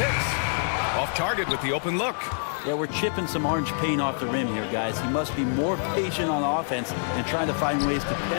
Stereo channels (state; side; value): silent; right; 61 dB below the other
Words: Off target with the open look. Yeah, we're chipping some orange paint off the rim here, guys. He must be more patient on offense and trying to find ways to